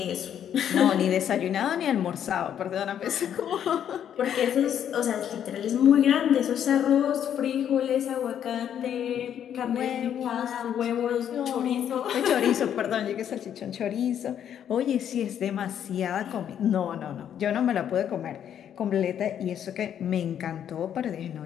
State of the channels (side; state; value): right; quieter; 9.5 dB